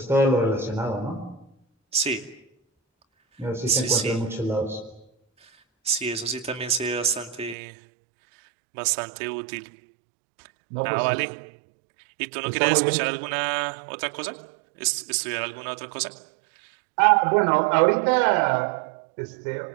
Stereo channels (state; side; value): drops out; left; at 7.6 s